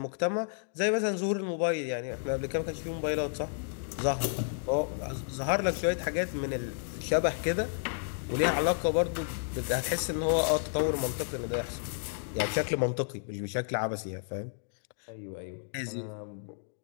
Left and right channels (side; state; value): right; silent; digital silence